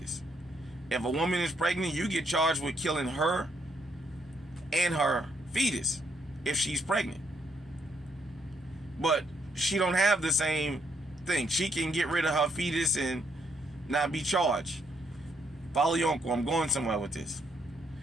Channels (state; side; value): normal; both; correlation 0.73